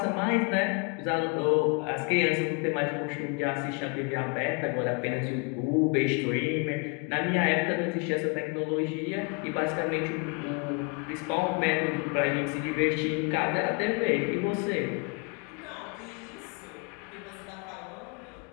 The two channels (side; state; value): right; quieter; 33.6 dB